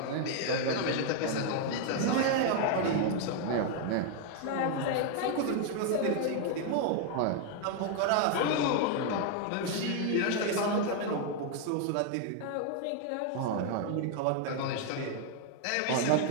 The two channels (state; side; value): different; both; correlation 0.01